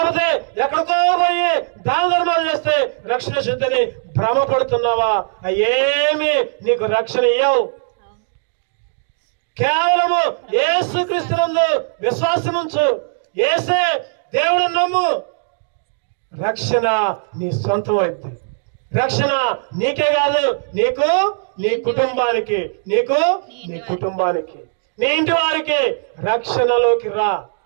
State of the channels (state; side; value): silent; left; digital silence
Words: ఎక్కడికో పోయి దాన ధర్మాలు చేస్తే రక్షణ వచ్చిందని భ్రమపడుతున్నావా? ఏమి నీకు రక్షణ ఇయ్యవు. కేవలము యేసుక్రీస్తునందు విశ్వాసముంచు. యేసే దేవుడిని నమ్ము, రక్షణ నీ సొంతం అయితే. రక్షణ నీకే కాదు, నీకు, నీ కుటుంబానికి, నీకు, నీ కుటుంబానికి, నీ ఇంటి వారికి రక్షణలోకి రా.